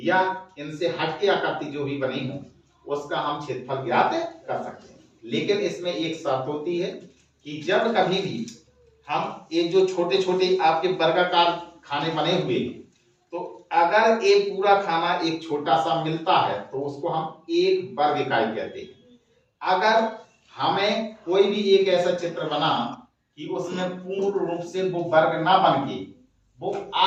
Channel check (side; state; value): both; identical; correlation 1.00